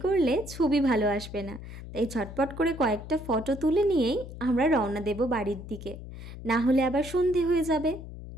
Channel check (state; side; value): noise; left; hum, 12 dB below the sound